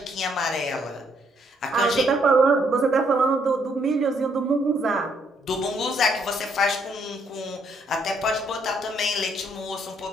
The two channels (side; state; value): both; normal; correlation 0.70